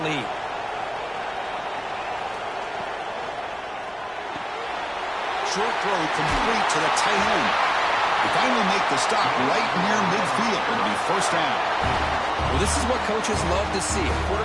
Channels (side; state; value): both; identical; correlation 1.00